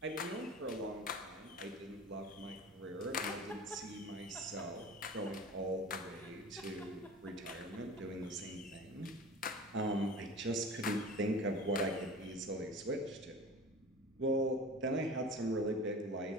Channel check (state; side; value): normal; both; correlation 0.37